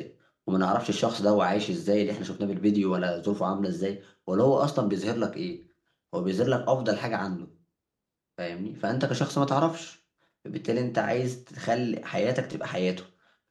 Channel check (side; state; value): both; identical; correlation 1.00